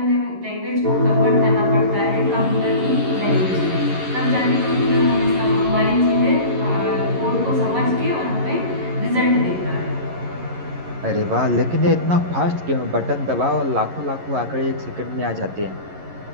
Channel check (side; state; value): left; late; 11 ms